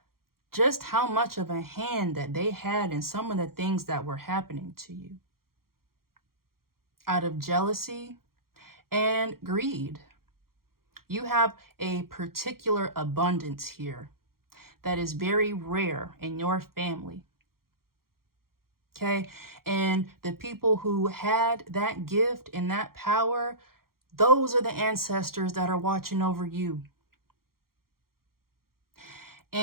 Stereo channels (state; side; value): late; left; 0.93 ms